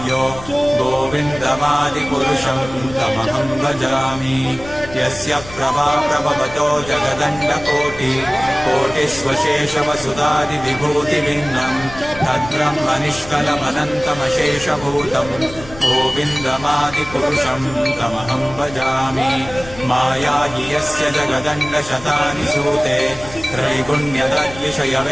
गोविन्दमादिपुरुषं तमहं भजामि यस्य प्रभा प्रभवतो जगदण्डकोटि कोटिष्वशेषवसुधादिविभूतिभिन्नं तद्ब्रह्मनिष्कलमनन्तमशेषभूतं गोविन्दमादिपुरुषं तमहं भजामि माया हि यस्य जगदण्डशतानि सूते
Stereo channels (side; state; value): left; noise; rumble, 16 dB below the sound